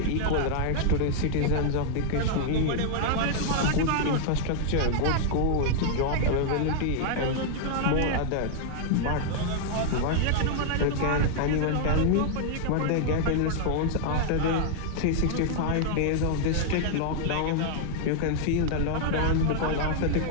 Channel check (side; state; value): both; different; correlation 0.00